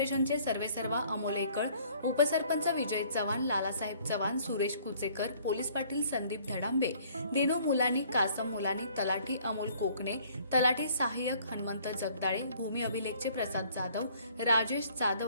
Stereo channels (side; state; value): both; inverted; correlation -0.58